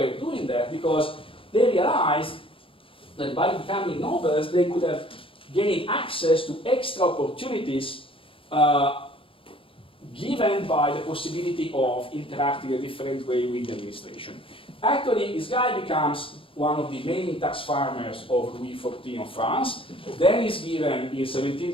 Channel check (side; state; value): right; late; 0.26 ms